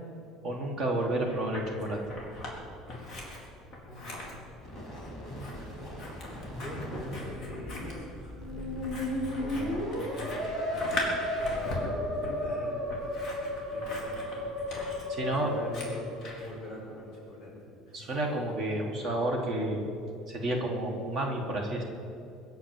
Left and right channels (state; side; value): normal; both; correlation 0.45